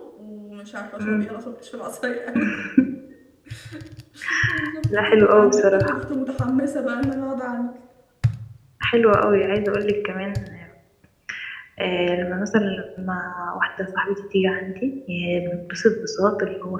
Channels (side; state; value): both; identical; correlation 1.00